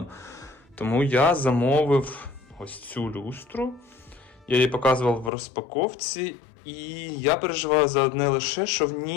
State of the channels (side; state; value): right; drops out; at 5.3 s